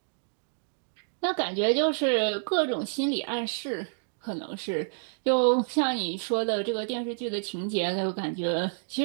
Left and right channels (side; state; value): left; silent; digital silence